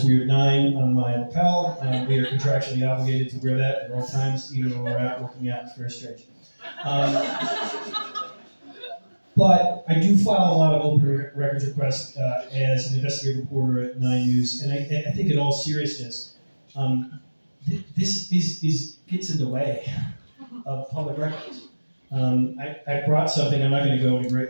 weird 9 on my lapel. We are contractually obligated to wear that at all times, even when we're out working out. It's very strange. But I do file a lot of open records requests as an investigative reporter at 9 News, and I think in all seriousness, this gets in the way of public records. I brought something. I'm not going to go into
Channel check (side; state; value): both; inverted; correlation -1.00